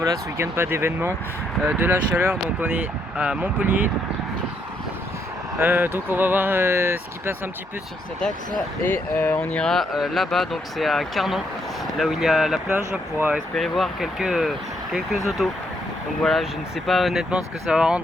ce week-end pas d'événement, de la chaleur, donc on est à Montpellier. Donc on va voir ce qui passe un petit peu sur cet axe et on ira là-bas, donc c'est à Carnon, là où il y a la plage, pour espérer voir quelques autos. Donc voilà, je ne sais pas honnêtement ce que ça va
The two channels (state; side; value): normal; both; correlation 0.74